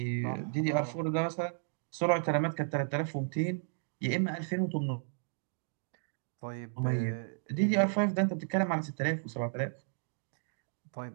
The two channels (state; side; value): silent; left; digital silence